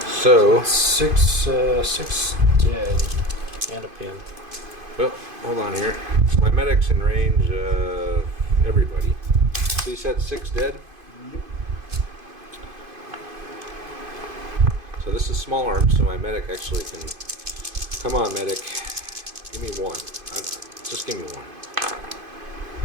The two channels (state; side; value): late; left; 2.5 ms